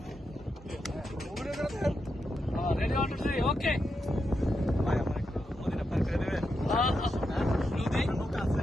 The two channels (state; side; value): normal; both; correlation 0.85